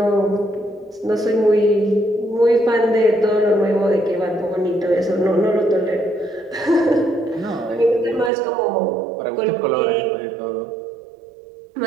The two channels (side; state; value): left; drops out; at 8.3 s